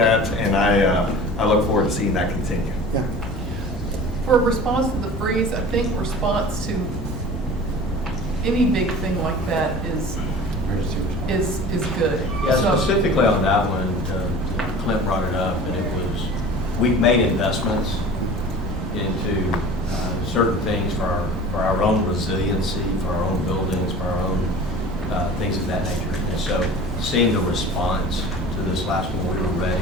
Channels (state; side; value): normal; both; correlation 0.40